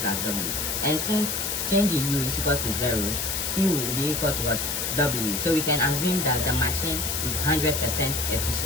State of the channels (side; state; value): left; noise; hiss, 1 dB below the sound